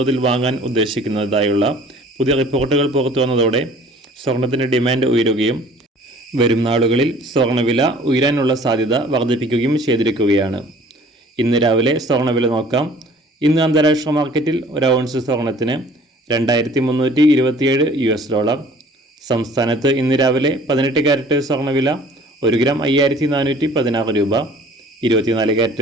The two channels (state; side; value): normal; both; correlation 0.51